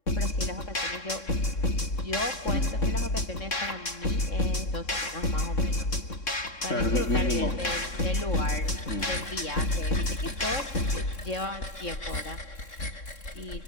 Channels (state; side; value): late; right; 3.6 ms